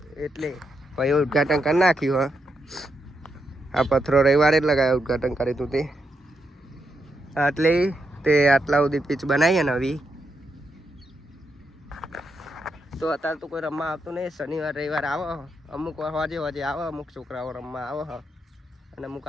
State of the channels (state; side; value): normal; both; correlation 0.82